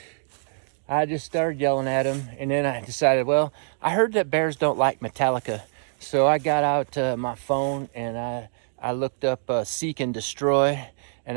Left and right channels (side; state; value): left; silent; digital silence